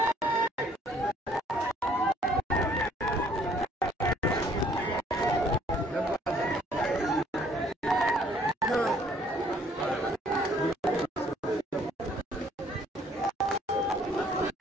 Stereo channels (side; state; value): both; normal; correlation 0.61